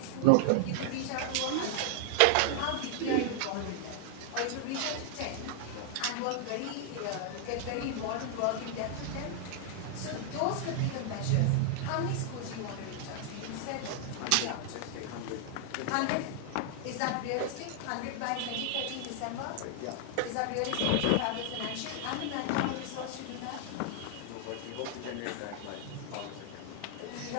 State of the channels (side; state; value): both; different; correlation -0.01